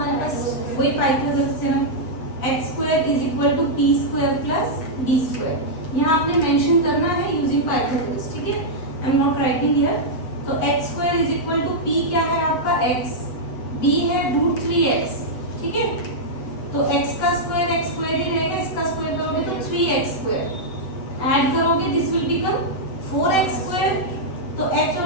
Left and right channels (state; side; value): late; right; 7.9 ms